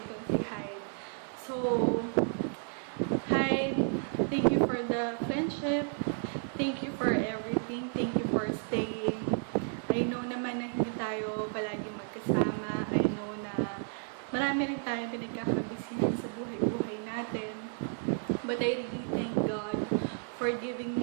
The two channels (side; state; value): left; silent; 56 dB below the other